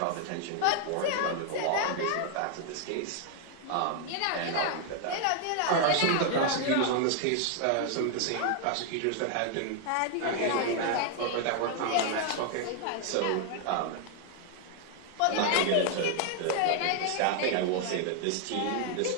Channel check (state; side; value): different; both; correlation 0.00